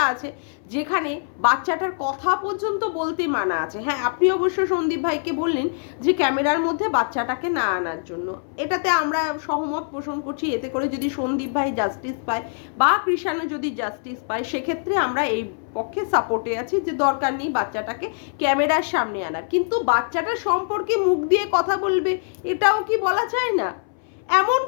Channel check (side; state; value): right; silent; 63 dB below the other